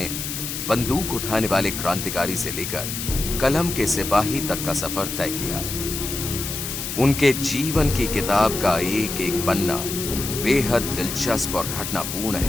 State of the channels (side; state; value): left; noise; hiss, 5 dB below the sound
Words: बंदूक उठाने वाले क्रांतिकारी से लेकर कलम के सिपाही तक का सफर तय किया। उनके जीवन की किताब का एक एक पन्ना बेहद दिलचस्प और घटनापूर्ण